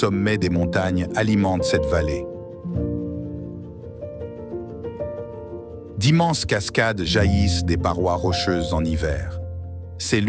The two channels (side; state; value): both; identical; correlation 1.00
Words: des montagnes alimente cette vallée. D'immenses cascades jaillissent des parois rocheuses en hiver. C'est